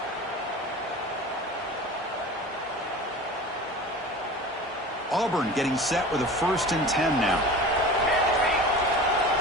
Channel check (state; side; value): normal; both; correlation 0.36